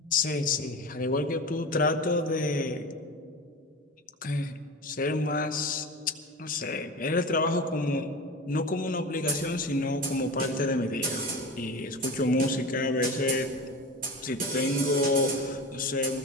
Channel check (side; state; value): both; normal; correlation 0.29